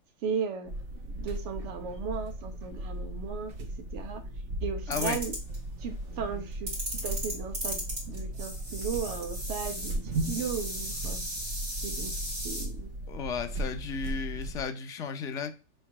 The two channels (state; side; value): late; left; 3.4 ms